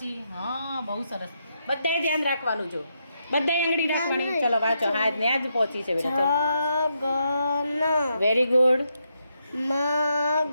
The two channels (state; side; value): inverted; both; correlation -0.80